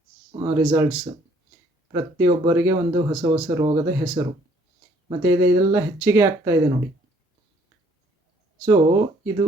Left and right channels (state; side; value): normal; both; correlation 0.62